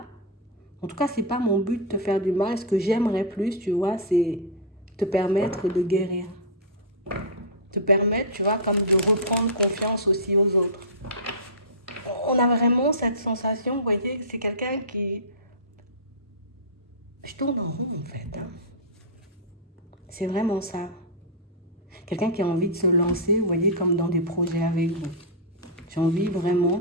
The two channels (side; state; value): both; normal; correlation -0.13